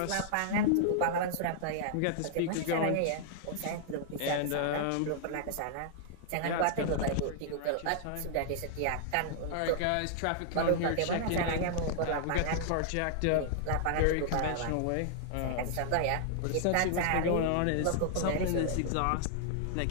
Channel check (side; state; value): both; different; correlation -0.01